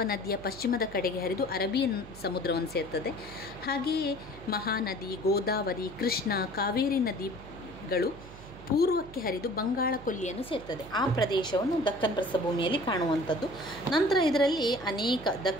ಪಶ್ಚಿಮದ ಕಡೆಗೆ ಹರಿದು ಅರೇಬಿಯನ್ ಸಮುದ್ರವನ್ನು ಸೇರ್ತದೆ. ಹಾಗೆಯೇ ಮಹಾನದಿ, ಗೋದಾವರಿ, ಕೃಷ್ಣ, ಕಾವೇರಿ ನದಿಗಳು ಪೂರ್ವಕ್ಕೆ ಹರಿದು ಬಂಗಾಳ ಕೊಲ್ಲಿಯನ್ನು ಸೇರ್ತದೆ. ಆ ಪ್ರದೇಶವನ್ನು ದಕ್ಕನ್ ಪ್ರಸ್ಥಭೂಮಿಯಲ್ಲಿ ಕಾಣುವಂಥದ್ದು. ನಂತರ ಇದರಲ್ಲಿ ಅನೇಕ,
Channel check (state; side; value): noise; right; hum, 17 dB below the sound